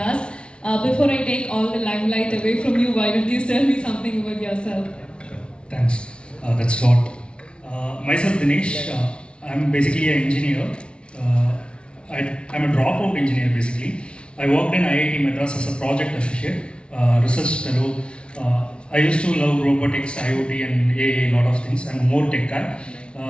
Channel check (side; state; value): right; late; 0.058 ms